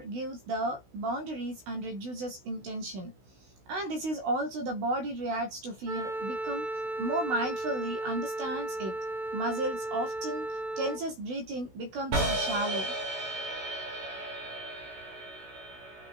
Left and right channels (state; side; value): late; left; 16 ms